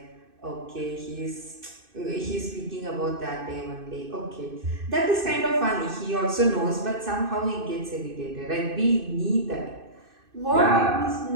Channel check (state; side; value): late; left; 2.6 ms